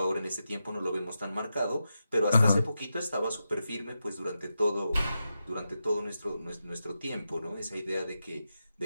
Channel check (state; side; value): inverted; both; correlation -0.89